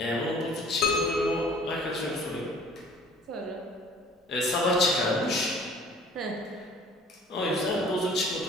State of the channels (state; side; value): normal; both; correlation 0.51